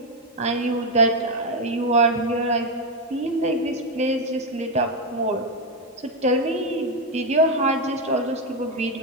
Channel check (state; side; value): normal; both; correlation 0.05